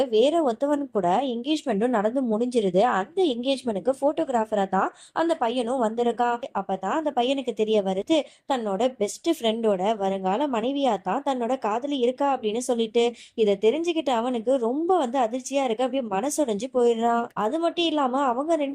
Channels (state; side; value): identical; both; correlation 1.00